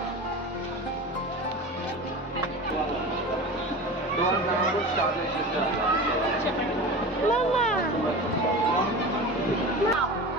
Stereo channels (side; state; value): both; normal; correlation 0.32